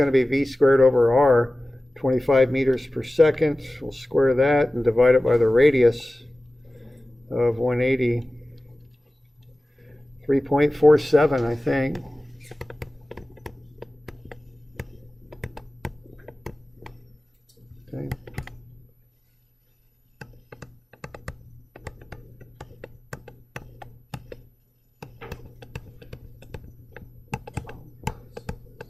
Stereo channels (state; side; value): normal; both; correlation 0.96